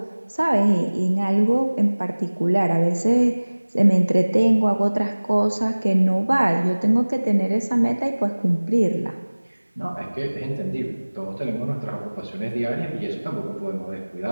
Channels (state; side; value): inverted; both; correlation -1.00